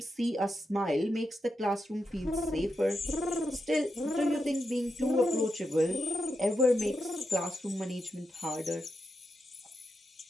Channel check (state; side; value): normal; both; correlation 0.86